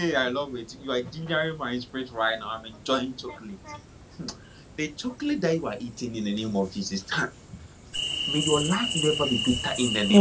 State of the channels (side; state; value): both; identical; correlation 1.00